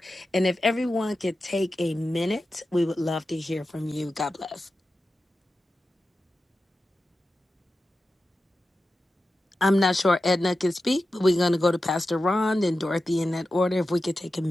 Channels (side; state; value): both; normal; correlation 0.92